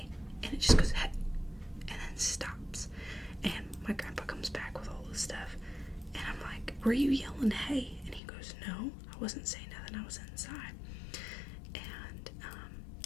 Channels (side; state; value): right; drops out; at 8.2 s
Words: and it just goes hey and then stops. And my grandpa comes back with all this stuff and I'm like, were you yelling hey? And he goes, no, I wasn't saying nothing, I was inside. And